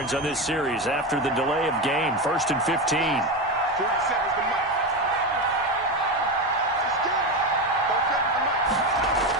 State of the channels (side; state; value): both; normal; correlation 0.16